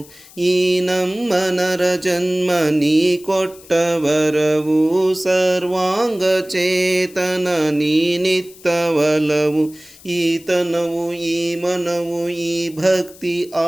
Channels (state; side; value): noise; left; hiss, 22 dB below the sound